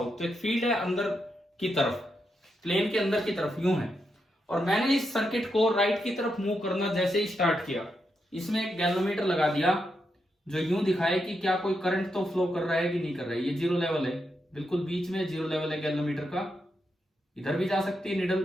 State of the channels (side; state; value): both; normal; correlation 0.84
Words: तो एक फील्ड है अंदर की तरफ, प्लेन के अंदर की तरफ यूं है। और मैंने इस सर्किट को राइट की तरफ मूव करना जैसे ही स्टार्ट किया, इसमें एक गैल्वेनोमीटर लगा दिया जो यूं दिखाए कि क्या कोई करंट तो फ्लो कर रहा है कि नहीं कर रहा है। ये जीरो लेवल है, बिल्कुल बीच में जीरो लेवल है गैल्वेनोमीटर का। इधर भी जा सकती है